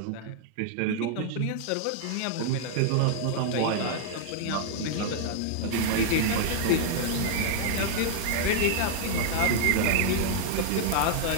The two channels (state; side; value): different; both; correlation -0.01